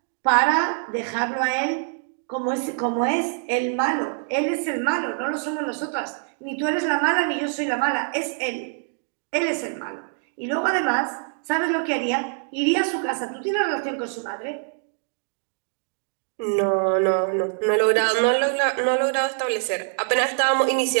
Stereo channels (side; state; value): left; silent; 60 dB below the other